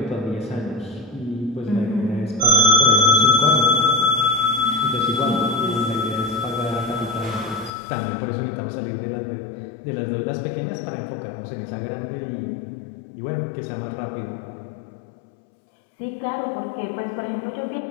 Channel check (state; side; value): drops out; right; at 7.7 s